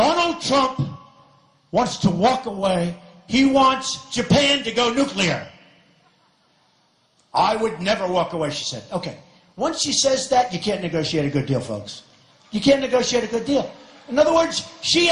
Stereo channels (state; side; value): identical; both; correlation 1.00